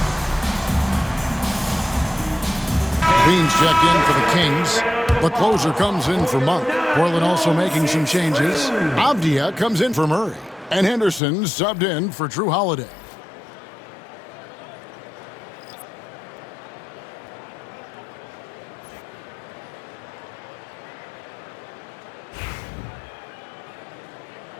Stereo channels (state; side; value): drops out; right; at 11.2 s